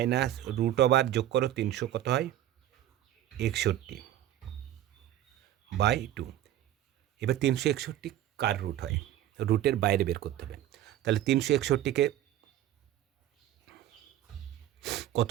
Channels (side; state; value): left; quieter; 12.6 dB